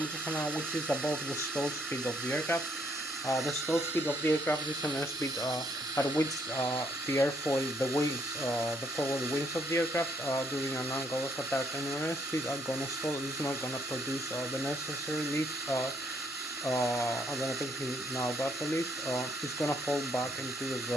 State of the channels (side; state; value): both; normal; correlation 0.71